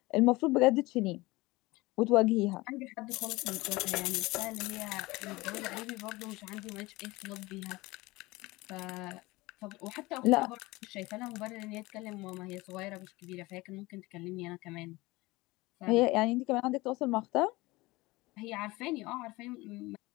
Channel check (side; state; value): right; quieter; 21.4 dB